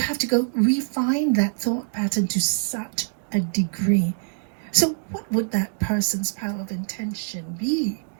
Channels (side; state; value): left; silent; digital silence